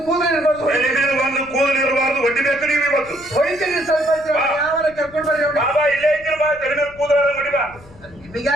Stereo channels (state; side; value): noise; left; rumble, 23 dB below the sound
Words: ಕೂದಲು ಇರ್ಬಾರ್ದು. ಒಂದು ಕೂದಲು ಇರಬಾರ್ದು, ಹೊಡಿಬೇಕು ನೀವು ಇವತ್ತು. ಹೊಡಿತೀನಿ ಸ್ವಲ್ಪ. ಯಾವಾಗ ಕರ್ಕೊಂಡು ಬರ್ರಿ ಅವ್ನ. ಬಾಬಾ ಇಲ್ಲೇ ಇದ್ದೀನಿ ಬಾ, ತಲೆ ಮೇಲೆ ಕೂದಲ ಹೊಡಿ ಬಾ.